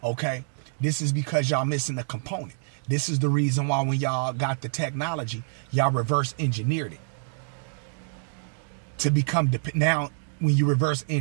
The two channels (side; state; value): left; silent; digital silence